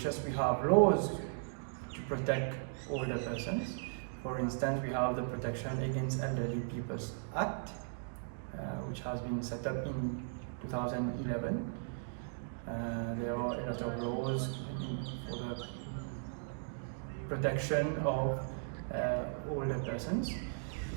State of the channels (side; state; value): left; silent; digital silence